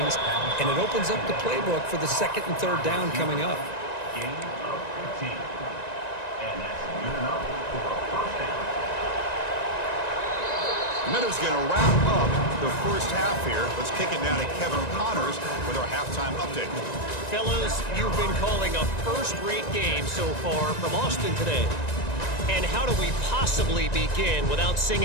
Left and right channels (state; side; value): late; right; 1.9 ms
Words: and it opens up the playbook for the 2nd and 3rd down coming up. Gain of 15. And that's good enough for a 1st down. Meadows going to wrap up the 1st half here. Let's kick it now to Kevin Connors with our halftime update. Fellas, you've been calling a first-rate game so far from Austin today. And how do we possibly begin without